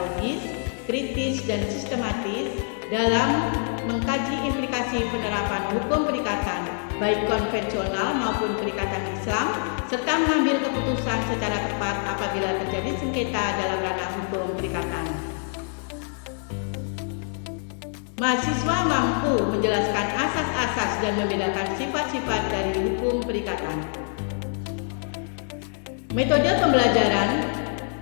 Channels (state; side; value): silent; right; 59 dB below the other